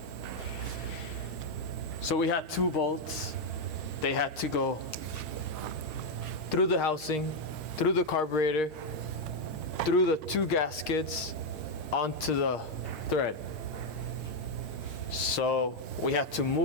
So we had 2 bolts. They had to go through the housing, through the carburetor, through the 2 gaskets, onto the thread. So we had to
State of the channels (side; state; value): right; late; 6.5 ms